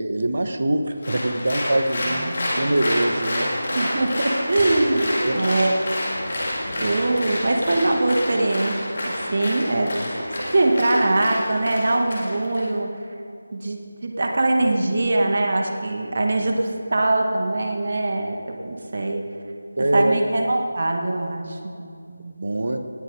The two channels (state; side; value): inverted; both; correlation -0.96